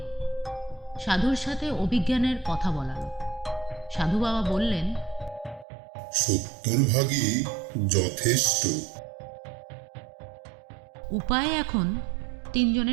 সাধুর সাথে অভিজ্ঞানের কথা বলালো। সাধু বাবা বললেন, 70% যথেষ্ট। উপায় এখন 3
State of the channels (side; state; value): left; drops out; at 5.7 s